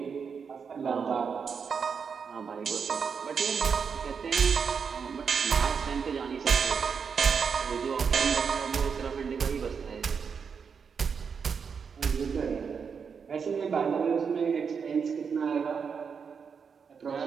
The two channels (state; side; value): quieter; left; 6.2 dB